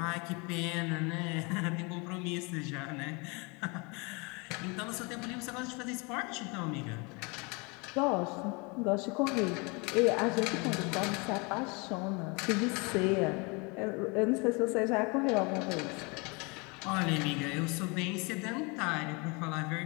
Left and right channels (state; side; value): quieter; right; 29.7 dB